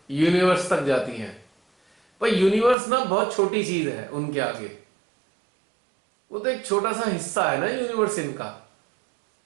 यूनिवर्स तक जाती हैं। पर यूनिवर्स ना बहुत छोटी चीज है उनके आगे। वो तो एक छोटा सा हिस्सा है ना यूनिवर्स इनका।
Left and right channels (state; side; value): drops out; left; at 2.8 s